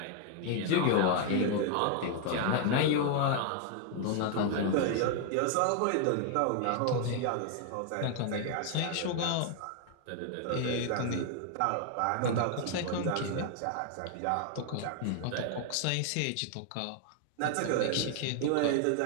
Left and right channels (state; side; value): different; both; correlation 0.00